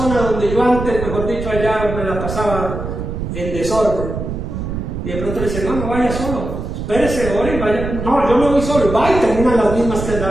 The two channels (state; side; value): noise; right; rumble, 5 dB below the sound